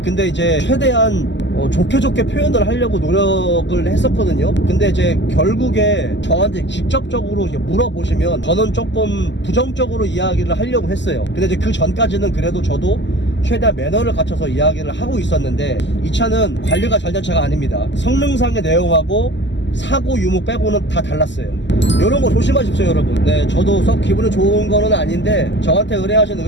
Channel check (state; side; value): late; right; 0.53 ms